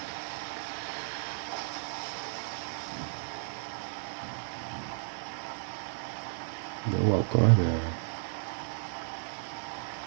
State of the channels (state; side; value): silent; left; digital silence